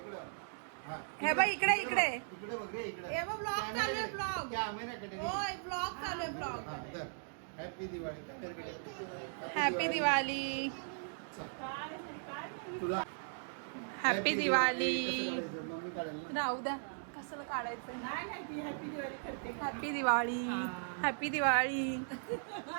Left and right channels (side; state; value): left; silent; digital silence